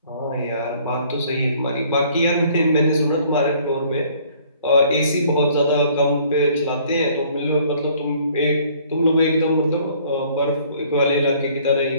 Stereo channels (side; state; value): both; inverted; correlation -0.58